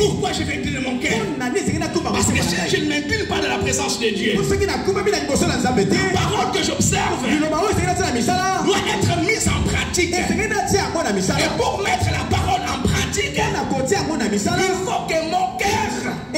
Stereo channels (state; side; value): identical; both; correlation 1.00